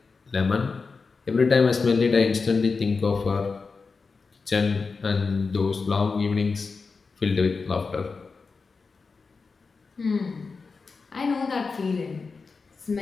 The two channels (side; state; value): right; quieter; 4.6 dB